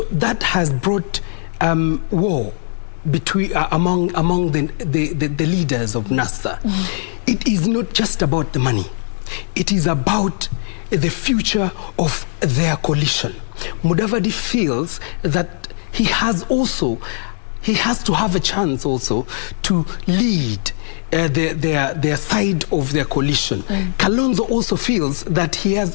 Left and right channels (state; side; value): silent; right; 66 dB below the other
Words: that has brought war between among the leaders of NASA. It is not just about the money. It is about the future of their coalition. Mudavadi feels that he has to have a chance also to lead their side of their coalition. Kalonzo also feels that